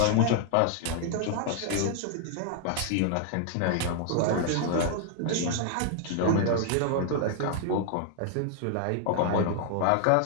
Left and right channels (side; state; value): both; different; correlation 0.00